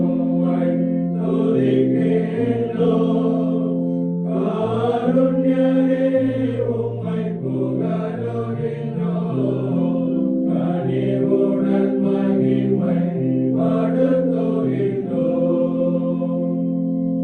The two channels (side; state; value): both; identical; correlation 1.00